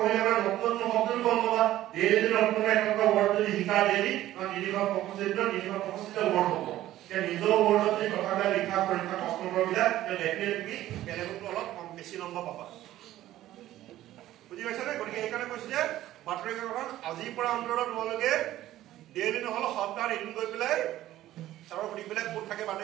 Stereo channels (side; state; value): left; quieter; 14.2 dB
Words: মানে নতুন শব্দ গম পাবা ডেইলি নতুন এটা ৱৰ্ড যদি শিকা ডেইলি নিলিখা প্ৰকৃতিত ৱৰ্ড হ'ব যে নিজৰ ৱৰ্ডত যদি কথাবিলাক লিখা পৰীক্ষা প্ৰশ্নবিলাক ডেফিনেটলি বেলেগতো অলপ কম বেছি নম্বৰ পাবা বুজি পাইছা নে গতিকে এইকাৰণে কৈছো যে বাতৰি কাকতখন আজিৰ পৰা অন্তৰত তোমালোকে ডেইলি নহলে সপ্তাহত এদিন গৈ পেলাই আৰু সুধিবিলাক ক'ত থাকে